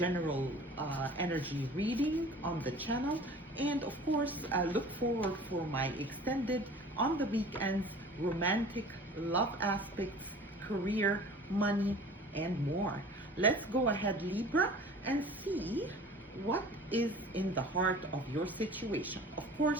energy reading on the channel. And of course, look forward for my extended on the weekends romantic love aspects, career, money, and more. Let's go ahead, Libra, and see what is in the heart of your situation. Of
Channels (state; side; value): normal; both; correlation 0.44